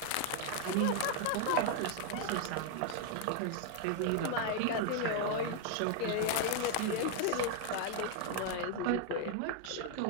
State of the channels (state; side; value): different; both; correlation 0.00